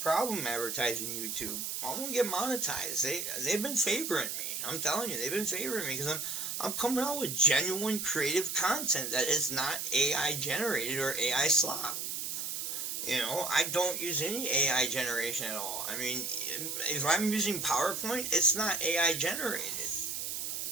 advertising YouTube. I'm gonna get monetized. They've been favoring me. I'm telling you, they've been favoring me because I'm coming out with genuine creative content that is not AI generated or AI slop. I don't use any AI generation at all. I mean, if I'm using PowerPoint, it's not AI generated.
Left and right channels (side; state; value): right; noise; hiss, 3 dB below the sound